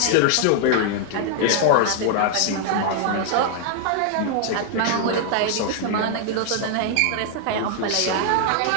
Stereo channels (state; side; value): different; both; correlation 0.00